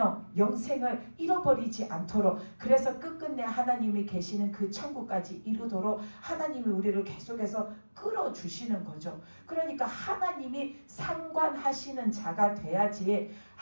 영생을 잃어버리지 않도록 그래서 끝끝내 하나님이 계시는 그 천국까지 이루도록 하나님이 우리를 계속해서 끌어주시는 거죠. 그러니까 하나님이 상관하시는 자가 돼야지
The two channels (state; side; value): inverted; both; correlation -1.00